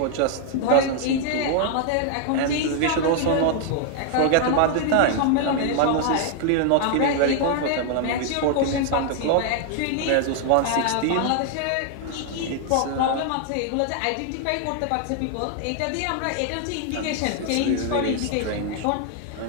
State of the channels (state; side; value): different; both; correlation 0.00